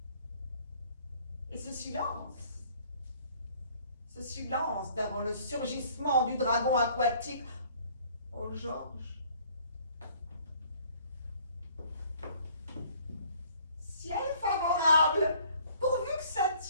Et ce silence d'avant le surgissement du dragon aquatique. Oh Georges. Ciel favorable, pourvu que ça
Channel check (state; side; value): inverted; both; correlation -0.57